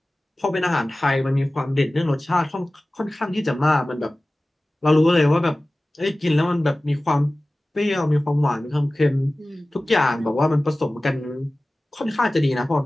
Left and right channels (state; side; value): normal; both; correlation 0.97